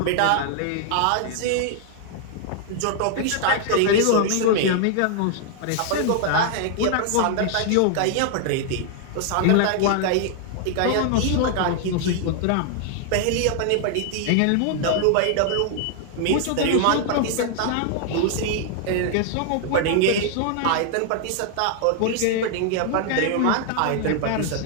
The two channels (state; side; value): different; both; correlation 0.00